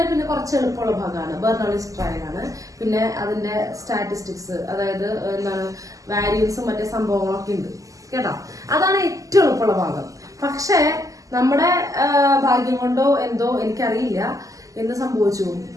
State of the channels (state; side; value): late; left; 0.16 ms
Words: പിന്നെ കുറച്ച് എളുപ്പമുള്ള ഭാഗമാണ് ബെർണോളിസ് ട്രയൽ ആണ്. പിന്നെ അതിന്റെ സ്റ്റാറ്റിസ്റ്റിക്സ്, അതായത് എന്താണ് വാരിയൻസും മറ്റേ സംഭവങ്ങളൊക്കെ ഉണ്ട് കേട്ടോ. അതാണ് ഏറ്റവും എളുപ്പമുള്ള ഭാഗം. പക്ഷേ നമ്മുടെ ഭാഗ്യം കൊണ്ടോ എന്തോ എനിക്കറിയില്ല എന്ത് സംഭവിച്ചു,